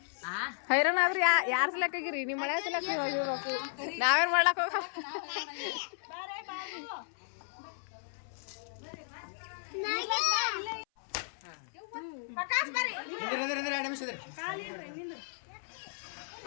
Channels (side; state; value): right; silent; 55 dB below the other